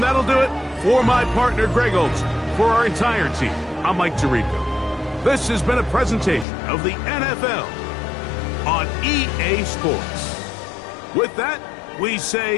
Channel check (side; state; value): right; drops out; at 6.5 s